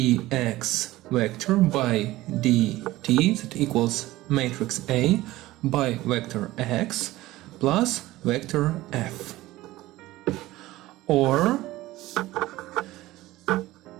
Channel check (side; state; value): left; quieter; 17.3 dB